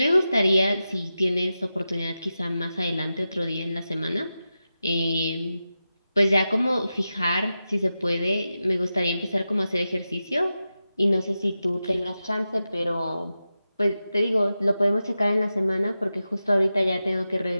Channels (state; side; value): inverted; both; correlation -0.91